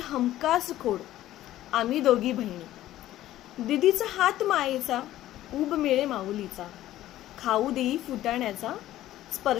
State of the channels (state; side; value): quieter; right; 14.1 dB